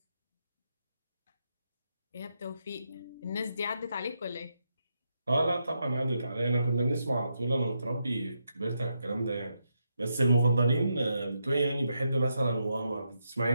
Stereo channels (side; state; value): both; inverted; correlation -0.82